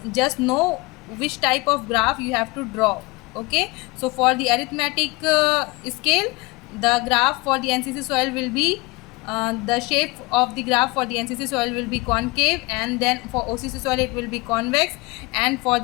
just know which type of graph you have to draw. Okay, so for the arithmetic scale, the graph for the NCC soil will be the shape of the graph for the NCC soil will be concave, and then for OCC soil it will be convex, and for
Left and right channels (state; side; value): quieter; right; 24.2 dB